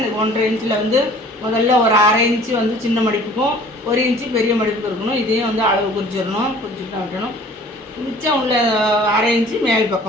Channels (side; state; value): both; normal; correlation 0.50